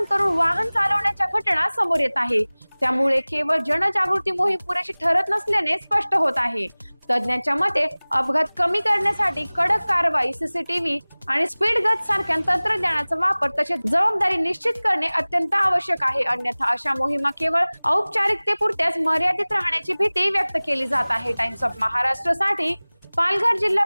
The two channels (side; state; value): both; inverted; correlation -1.00